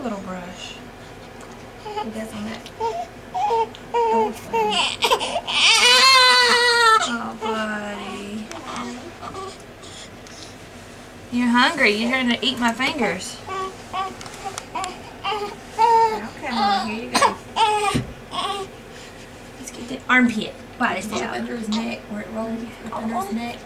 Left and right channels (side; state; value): both; identical; correlation 1.00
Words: little brush. He does on that. Oh, buddy. You're hungry. You're trying to eat my fingers. Okay, Mom, here you go. Let's get the armpit. Body It's out. under his neck, where it rolls under his neck.